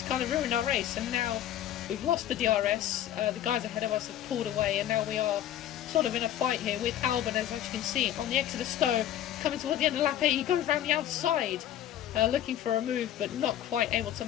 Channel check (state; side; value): quieter; right; 11.7 dB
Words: kind of ruined our race, and now we've lost the DRS. The guys ahead of us have pulled away, and now we are sort of in a fight here with Albon, as you can see on the exit of Stowe, coming towards the end of lap 8. He goes around the outside looking for a move, but not quite able to